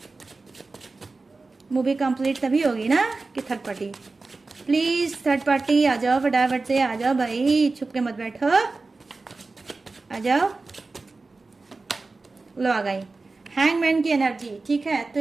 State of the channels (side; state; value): left; quieter; 3.7 dB